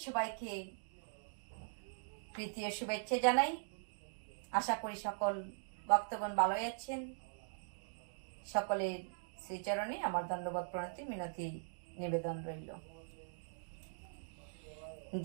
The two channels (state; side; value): silent; left; digital silence